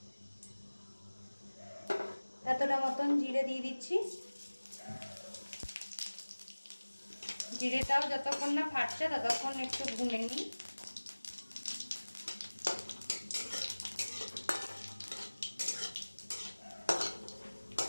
এতটা মতন জিরে দিয়ে দিচ্ছি। জিরেটাও যতক্ষণ না ফাটছে ততক্ষণ একটু ভুনে নিই।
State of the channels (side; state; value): both; inverted; correlation -1.00